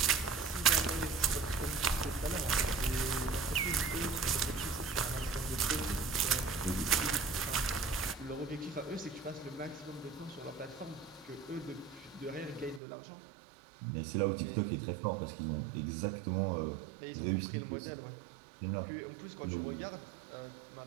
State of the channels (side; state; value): left; drops out; at 12.8 s